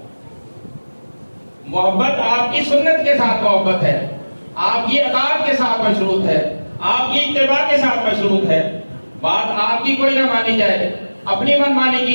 محبت آپ کی سنت کے ساتھ محبت ہے، آپ کی اطاعت کے ساتھ مشروط ہے، آپ کی اتباع کے ساتھ مشروط ہے. بات آپ کی کوئی نہ مانی جائے، اپنی من مانی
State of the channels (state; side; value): inverted; both; correlation -1.00